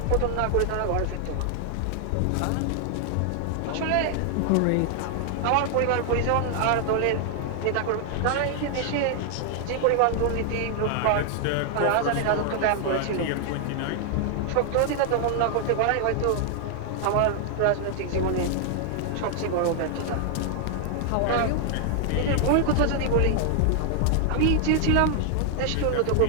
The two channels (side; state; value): both; different; correlation 0.00